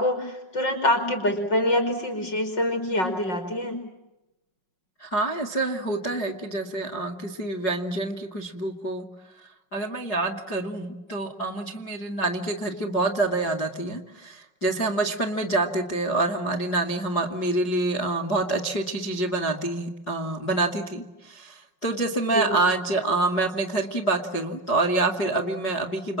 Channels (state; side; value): late; right; 5.4 ms